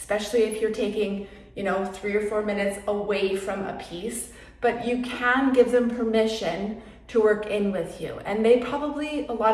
if you're taking, 3 or 4 minutes away from a piece, but you can give them permission to work in with you. And they probably, a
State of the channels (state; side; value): identical; both; correlation 1.00